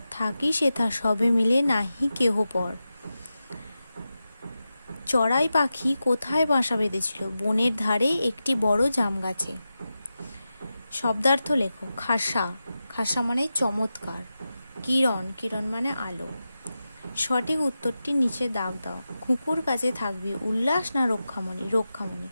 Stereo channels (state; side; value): inverted; both; correlation -0.92